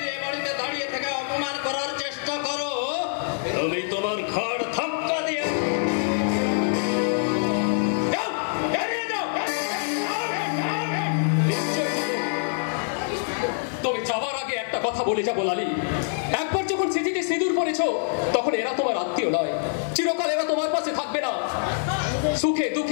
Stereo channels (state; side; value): silent; right; 62 dB below the other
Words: কথা বলে যাবো লালি। একবার যখন স্মৃতিতে সিঁদুর পড়েছ তখন এরা তোমার আত্মীয় নয়, চিরকাল এরা তোমার পাশে থাকবে না। সুখে